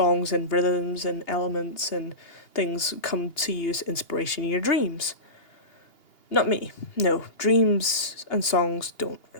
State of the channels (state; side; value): late; right; 2.8 ms